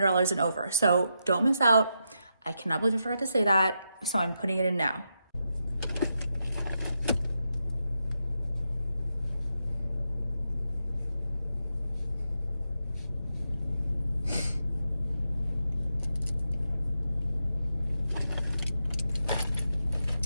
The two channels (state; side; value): inverted; both; correlation -0.85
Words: and over. So don't miss out. I cannot believe I forgot to say that. So I'm putting it in now.